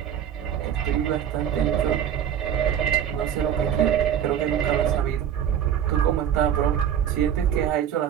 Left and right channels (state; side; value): quieter; left; 9.4 dB